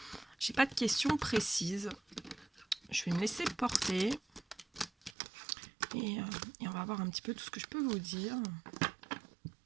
j'ai pas de questions précises. Je vais me laisser porter, et on va voir un petit peu tout ce que je peux vous dire.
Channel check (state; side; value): drops out; left; at 5.2 s